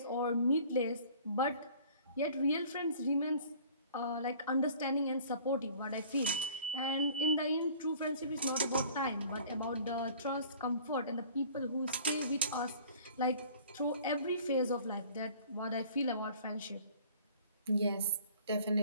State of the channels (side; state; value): both; inverted; correlation -0.50